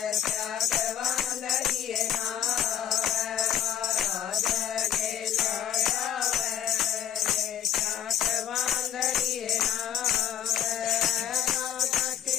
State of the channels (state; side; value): quieter; right; 9.9 dB